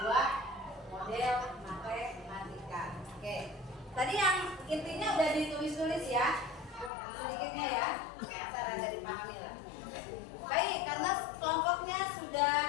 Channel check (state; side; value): drops out; right; at 6.9 s